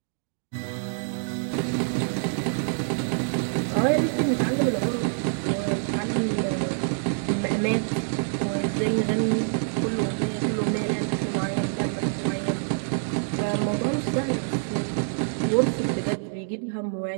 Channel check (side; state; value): left; silent; digital silence